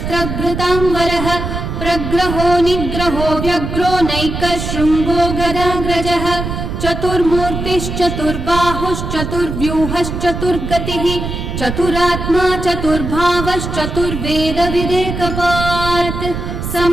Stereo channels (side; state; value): right; noise; rumble, 5 dB below the sound